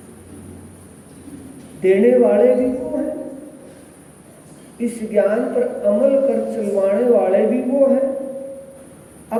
देने वाले भी वो हैं, इस ज्ञान पर अमल कर चलवाने वाले भी वो हैं।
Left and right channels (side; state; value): both; identical; correlation 1.00